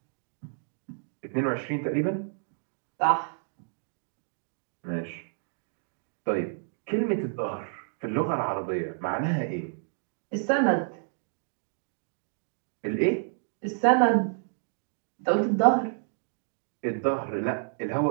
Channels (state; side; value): silent; left; digital silence